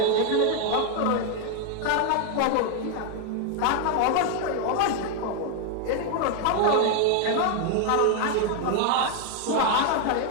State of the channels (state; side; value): different; both; correlation 0.01